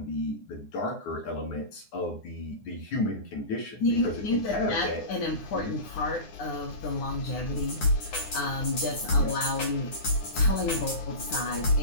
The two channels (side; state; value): right; late; 9.7 ms